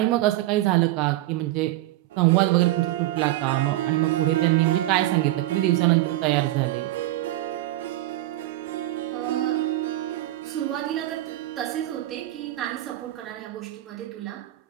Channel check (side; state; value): left; quieter; 16.0 dB